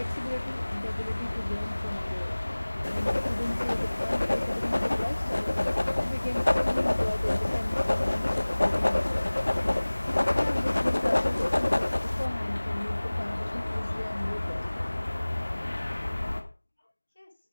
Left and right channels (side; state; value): both; inverted; correlation -1.00